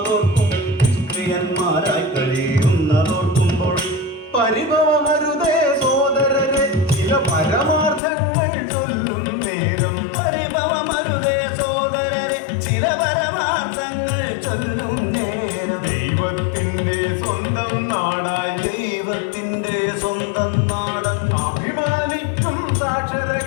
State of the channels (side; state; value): right; drops out; at 8.0 s